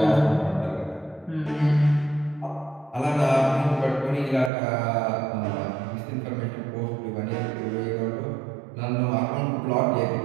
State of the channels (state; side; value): drops out; left; at 4.5 s